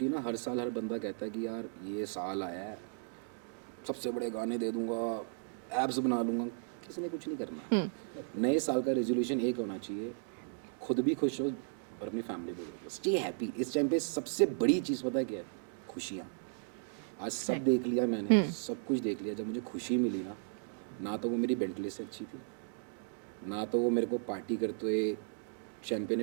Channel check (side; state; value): left; silent; digital silence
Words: ना हर साल हर बंदा कहता है कि यार ये साल आया है, सबसे बड़े गाने दे दूंगा, एप्स बना लूँगा। किसी ने कुछ नहीं करना। नए साल का रेजोल्यूशन एक होना चाहिए, खुद भी खुश हो और अपनी फैमिली को भी रखो। Stay happy. इस टाइम पे सबसे बड़ी चीज़ पता है क्या है? खुशियाँ। आज सब देख लिया मैंने, सब कुछ देख लिया। जब मुझे खुशी मिली ना तो वो मेरी बेंटली से अच्छी थी, ना तो वो मेरे को पार्टी करते हुए शैम्पेन